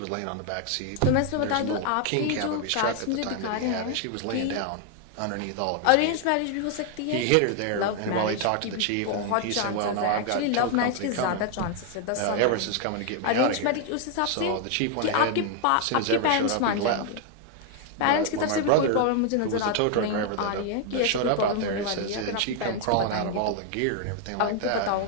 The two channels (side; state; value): both; different; correlation 0.00